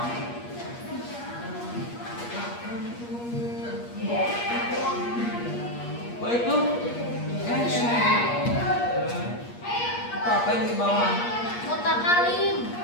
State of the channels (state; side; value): late; right; 8.4 ms